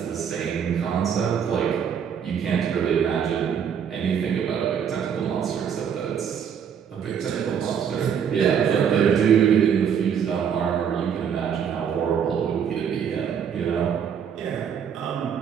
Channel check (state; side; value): quieter; left; 7.9 dB